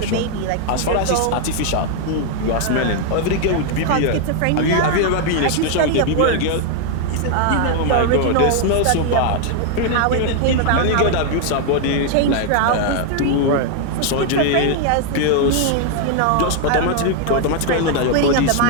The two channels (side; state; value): both; different; correlation 0.00